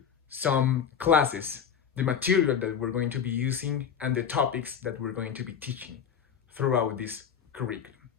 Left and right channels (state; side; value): quieter; right; 7.6 dB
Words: some classes, the material that we're going to be using, and the topics that we're going to be teaching throughout this curriculum.